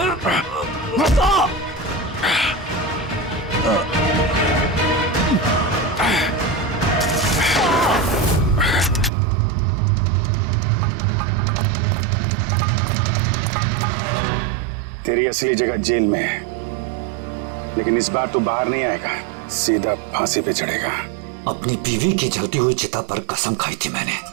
तेरी असली जगह जेल में है, लेकिन इस बार तू बाहर नहीं आएगा, सीधा फांसी पे चढ़ेगा। अपनी बीवी की जलती हुई चिता पर कसम खाई थी मैंने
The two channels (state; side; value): drops out; left; at 9.1 s